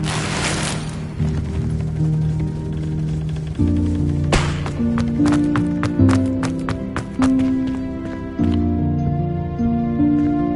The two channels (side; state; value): both; identical; correlation 1.00